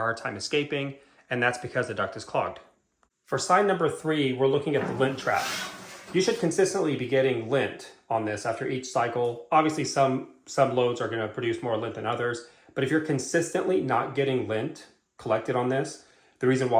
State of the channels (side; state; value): both; identical; correlation 1.00